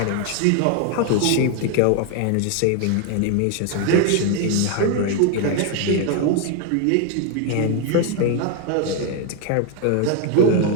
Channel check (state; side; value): different; both; correlation 0.01